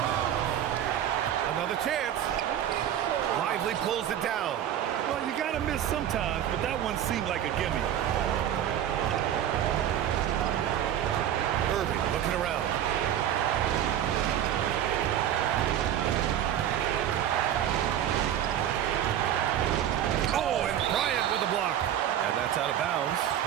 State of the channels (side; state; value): left; quieter; 10.7 dB